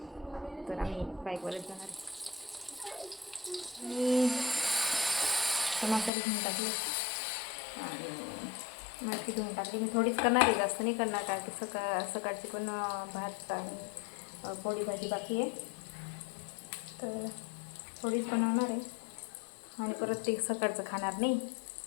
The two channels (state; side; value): drops out; right; at 6.1 s